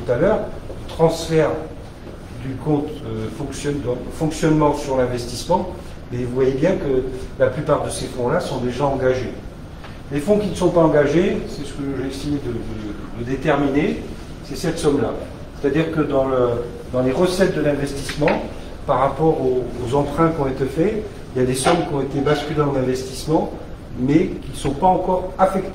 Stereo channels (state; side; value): identical; both; correlation 1.00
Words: à l'heure, transfert du compte fonctionnement sur l'investissement, et vous voyez bien que la plupart de ces fonds-là sont déjà engagés. Les fonds qui ne sont pas engagés, c'est ce que j'ai essayé de déterminer, c'est cette somme-là. C'est-à-dire que dans les recettes de l'investissement, par rapport aux emprunts qui ont été faits, il y a des sommes qui ont été basculées en investissement, mais qui ne sont pas encore